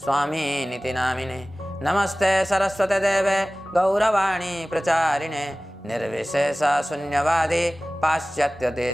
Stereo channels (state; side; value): normal; both; correlation 0.98